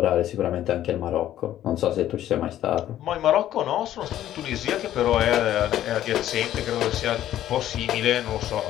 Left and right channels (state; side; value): quieter; right; 12.4 dB